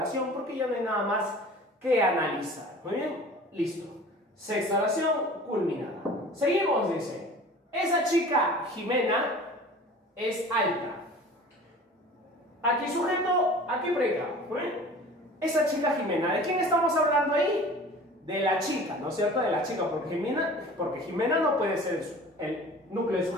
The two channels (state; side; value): normal; both; correlation 0.43